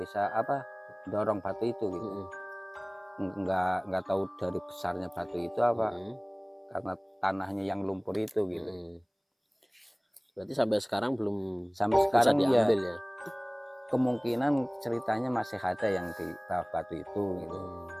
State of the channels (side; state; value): both; identical; correlation 1.00